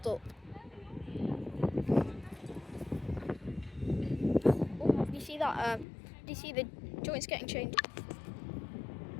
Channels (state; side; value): drops out; right; at 5.9 s